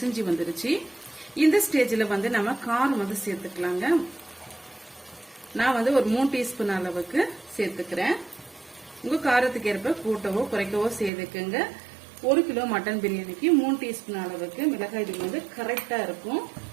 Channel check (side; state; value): left; drops out; at 11.1 s